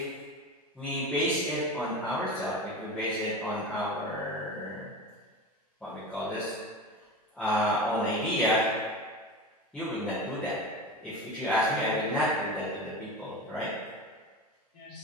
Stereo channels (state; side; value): normal; both; correlation 0.29